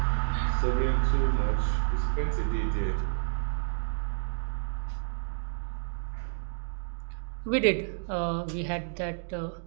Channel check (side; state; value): left; silent; digital silence